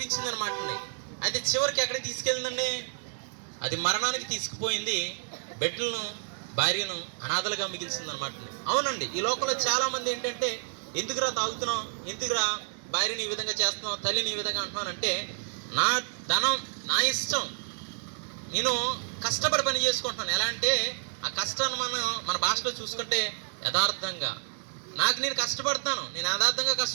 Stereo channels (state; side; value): silent; left; digital silence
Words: అనమాట. అయితే చివరికి ఎక్కడికి తీసుకెళ్ళిందండి? అది మరణానికి తీసుకుపోయింది. బిడ్డలను, భార్యను అనాథలుగా మిగిల్చింది అనమాట. అవునండి, ఈ లోకంలో చాలామంది ఏంటంటే, ఎందుకురా తాగుతున్నావు, ఎందుకురా భార్యని ఈ విధంగా చేస్తున్నావు, తల్లిని ఈ విధంగా అంటున్నానంటే, నా ధనం నా ఇష్టం, నేను కష్టపడి పని చేసుకుంటున్నాను. ఎలా అంటే ఆ కష్టాన్ని మన భాషలో చూసుకుంటే యథార్థంగా, నాకు నేను కష్టపడతాను, నేను యథార్థంగా